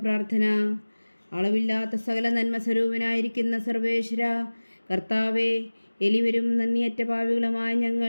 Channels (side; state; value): both; inverted; correlation -1.00